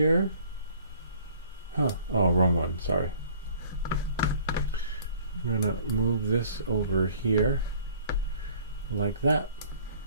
Oh, wrong one, sorry. I'm going to move this over here like that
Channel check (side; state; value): both; inverted; correlation -0.53